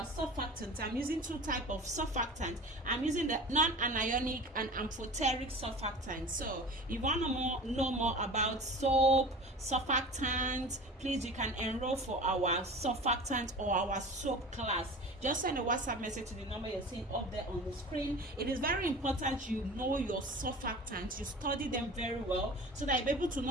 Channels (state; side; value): normal; both; correlation 0.37